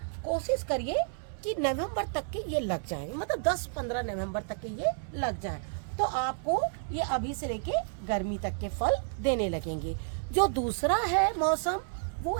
कोशिश करिए कि नवंबर तक के ये लग जाए, मतलब 10-15 नवंबर तक के ये लग जाए, तो आपको ये अभी से लेके गर्मी तक के फल देने लगेंगे। जो दूसरा है मौसम, वो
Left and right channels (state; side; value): silent; left; 57 dB below the other